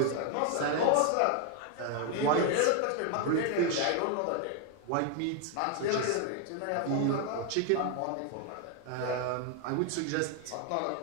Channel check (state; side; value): different; both; correlation 0.00